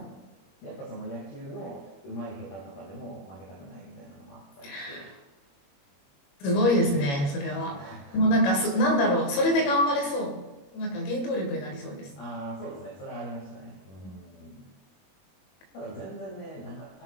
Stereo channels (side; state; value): right; late; 21 ms